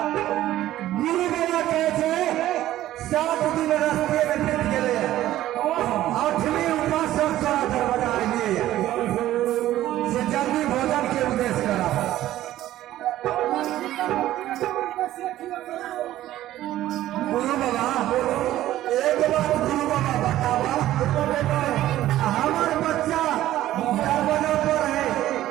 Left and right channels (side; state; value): left; quieter; 14.0 dB